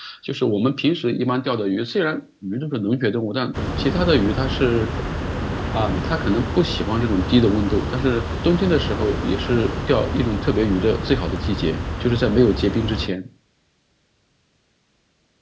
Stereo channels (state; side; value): identical; both; correlation 1.00